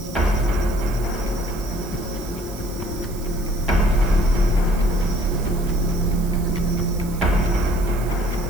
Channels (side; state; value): right; noise; hiss, 17 dB below the sound